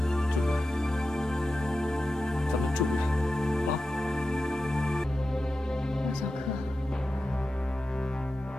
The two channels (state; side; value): normal; both; correlation 0.92